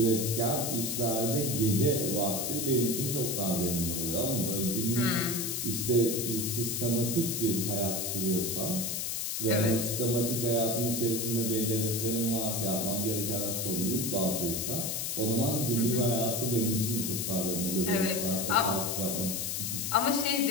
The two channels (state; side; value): noise; left; hiss, 2 dB below the sound